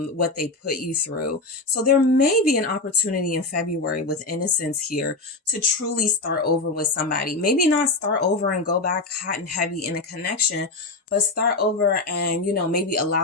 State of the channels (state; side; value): quieter; right; 3.3 dB